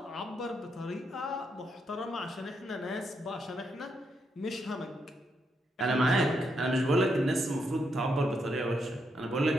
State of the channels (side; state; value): both; normal; correlation 0.80